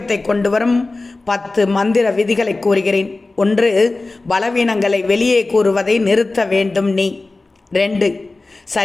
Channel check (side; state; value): right; quieter; 3.3 dB